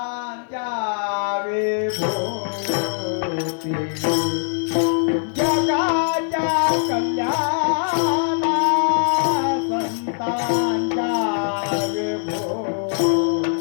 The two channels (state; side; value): silent; right; 55 dB below the other